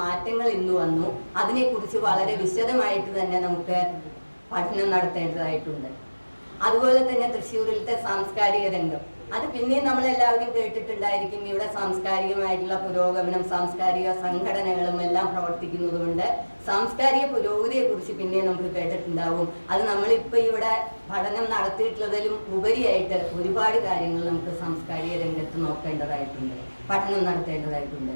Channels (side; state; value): both; inverted; correlation -1.00